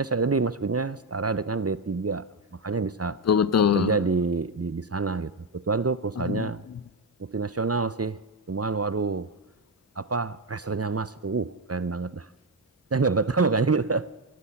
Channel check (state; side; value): normal; both; correlation 0.08